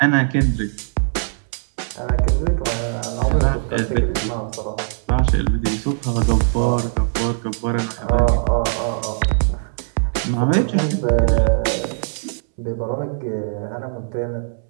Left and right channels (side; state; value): left; silent; 66 dB below the other